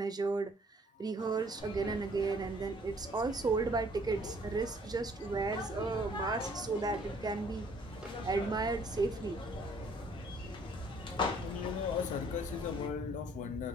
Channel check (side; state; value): both; normal; correlation 0.60